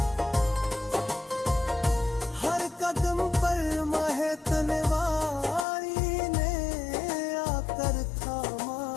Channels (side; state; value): right; drops out; at 5.7 s